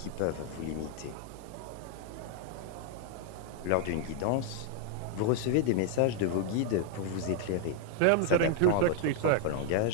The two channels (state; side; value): different; both; correlation 0.00